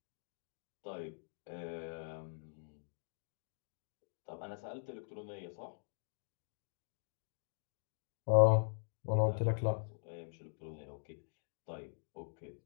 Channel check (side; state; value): right; silent; digital silence